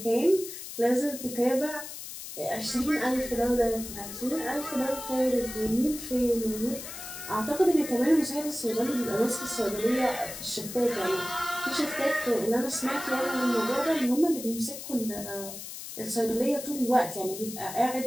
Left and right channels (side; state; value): left; noise; hiss, 10 dB below the sound